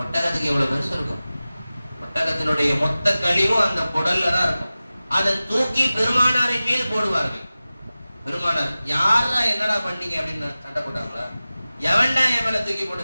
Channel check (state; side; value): inverted; both; correlation -0.96